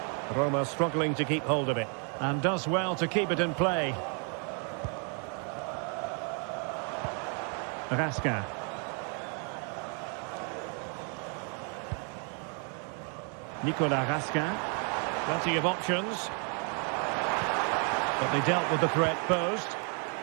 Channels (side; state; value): left; quieter; 38.8 dB